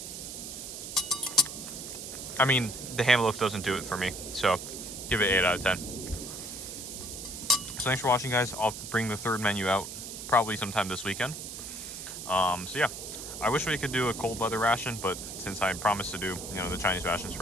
I mean, the ham loaf doesn't do it for me, so give it 8 out of 10. So thanks for watching, guys. I'll bring the 3rd menu out probably sometime this weekend. So yeah, I wish we could do a cold weather ration, but since I promised to do, you know, the Chinese rations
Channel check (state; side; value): noise; right; hiss, 9 dB below the sound